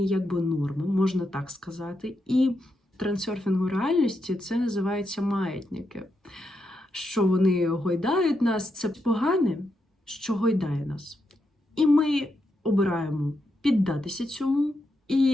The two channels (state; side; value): normal; both; correlation 0.83